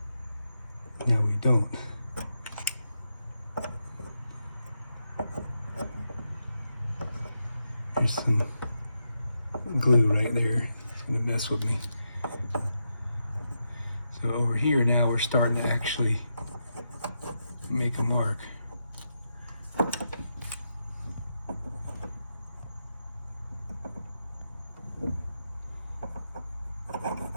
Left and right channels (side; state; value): both; inverted; correlation -0.85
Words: Now we don't. There's some glue right there. It's gonna mess with me. So over here now we're starting to actually make a mark.